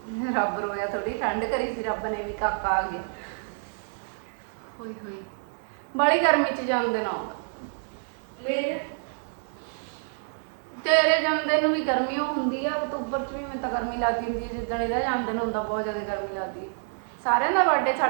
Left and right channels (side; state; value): left; silent; 60 dB below the other